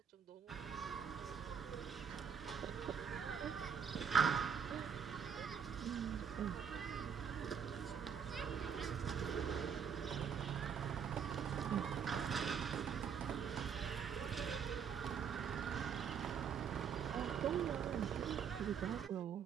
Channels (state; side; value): quieter; left; 7.3 dB